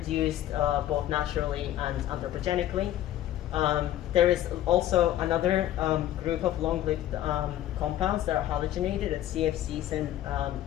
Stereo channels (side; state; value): right; quieter; 12.8 dB